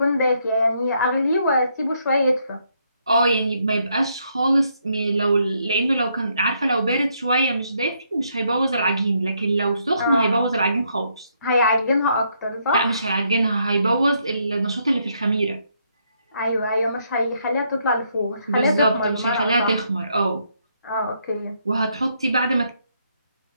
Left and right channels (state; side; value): inverted; both; correlation -0.74